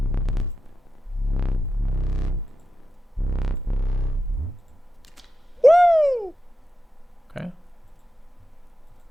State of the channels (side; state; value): both; normal; correlation 0.89